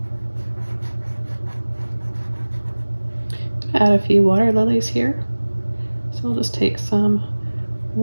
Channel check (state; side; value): inverted; both; correlation -1.00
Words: Add a few water lilies here. So we'll just take some